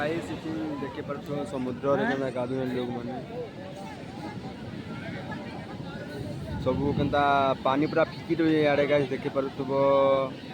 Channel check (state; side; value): identical; both; correlation 1.00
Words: इचिन देखे पर तो समुद्र रे केना गाधुन लोग माने सब केनता पानी पूरा फिकी रही आड़े गाइस देखे पर